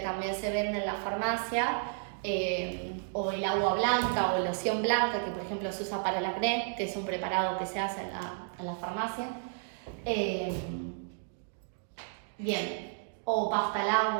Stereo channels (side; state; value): left; silent; digital silence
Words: se vende en la farmacia, o el agua blanca o loción blanca, que por ejemplo se usa para el acné, que es un preparado que se hace en la farmacia. Bien, o pasta al